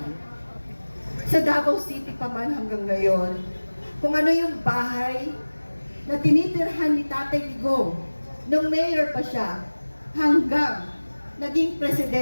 Sa Davao City pa man hanggang ngayon, kung ano yung bahay na tinitirhan ni Tatay Digong nung mayor pa siya, hanggang naging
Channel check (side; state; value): both; inverted; correlation -1.00